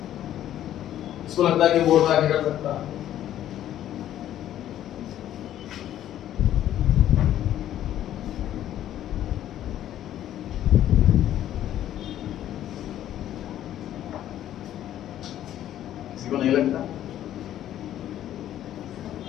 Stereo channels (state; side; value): quieter; right; 11.9 dB